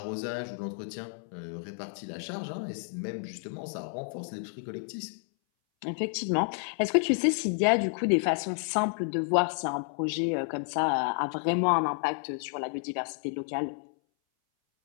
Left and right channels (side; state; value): right; silent; 58 dB below the other